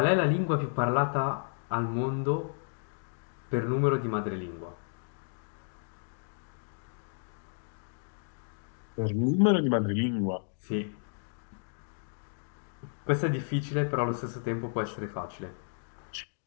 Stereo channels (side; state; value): right; silent; digital silence